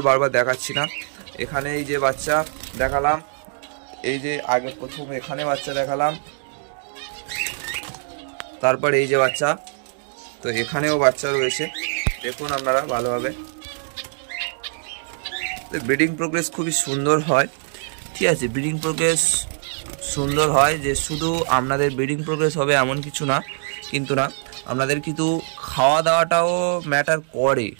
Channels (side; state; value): left; silent; digital silence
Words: বারবার দেখাচ্ছি না। এখানে এই যে বাচ্চা দেখালাম, এই যে আগে প্রথম এখানে বাচ্চা দেখালাম, তারপর এই যে বাচ্চা। তো এখানেও বাচ্চা রয়েছে, দেখুন আপনারা ভালোভাবে। ব্রিডিং প্রোগ্রেস খুবই সুন্দর হয়, ঠিক আছে। ব্রিডিং প্রোগ্রেস সুন্দর হয় যে শুধু আপনাদের ব্রিডিং প্রোগ্রেস হবে এমন কিছু না, কিন্তু না, আপনাদের কিন্তু খাওয়া দাওয়াটাও ম্যাটার করে,